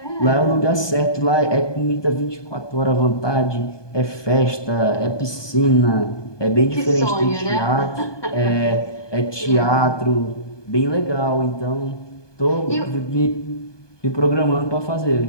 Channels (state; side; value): late; right; 1.2 ms